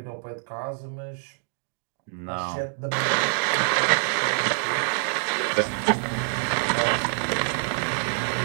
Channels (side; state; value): left; silent; 59 dB below the other